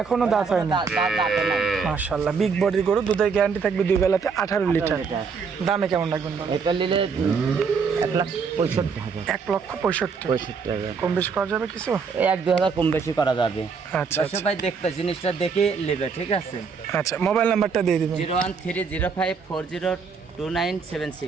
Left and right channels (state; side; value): quieter; left; 5.5 dB